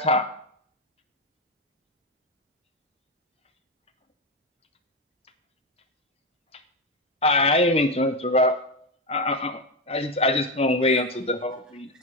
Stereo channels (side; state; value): both; normal; correlation 0.11